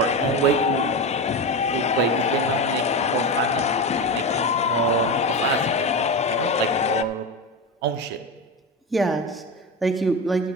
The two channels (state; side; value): normal; both; correlation 0.19